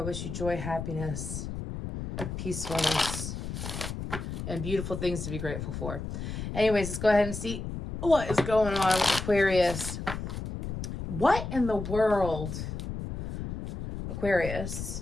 you joy, happiness, peacefulness, and beautiful things to be grateful for. Anyways, let's go ahead and see what is going on with Aquarius. What in the world?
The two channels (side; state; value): left; noise; rumble, 6 dB below the sound